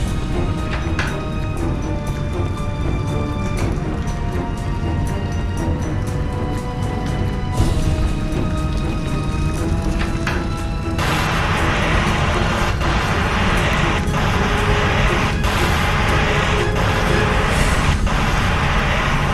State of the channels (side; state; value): both; identical; correlation 1.00